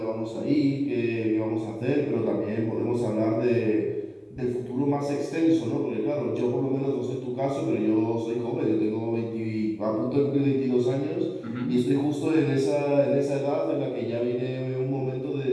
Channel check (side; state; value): both; identical; correlation 1.00